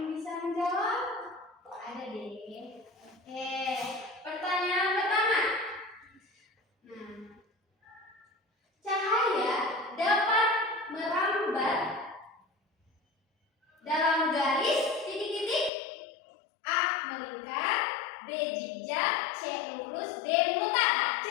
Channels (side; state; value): right; drops out; at 15.7 s